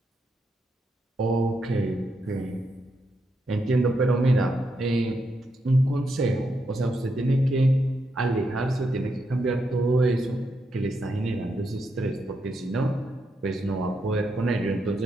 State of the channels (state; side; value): normal; both; correlation 0.82